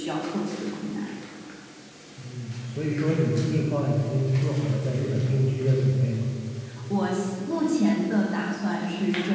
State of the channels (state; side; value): identical; both; correlation 1.00